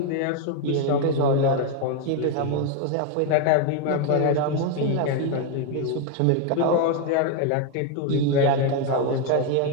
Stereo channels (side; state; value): both; different; correlation 0.01